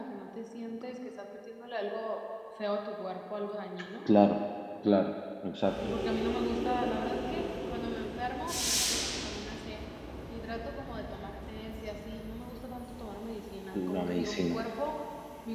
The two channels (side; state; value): both; identical; correlation 1.00